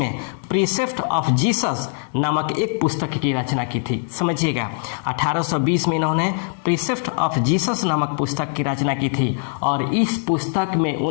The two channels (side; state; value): right; silent; 60 dB below the other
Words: प्रीसेप्ट ऑफ जीसस नामक एक पुस्तक की रचना की थी। समझिएगा, 1820 में इन्होंने प्रीसेप्ट ऑफ जीसस नामक पुस्तक की रचना की थी और इस पुस्तक में